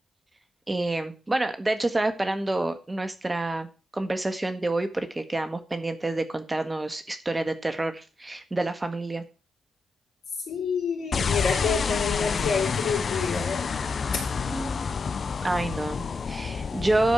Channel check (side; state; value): both; normal; correlation 0.87